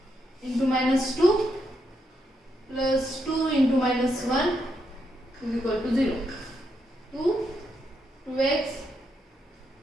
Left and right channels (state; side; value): normal; both; correlation 0.80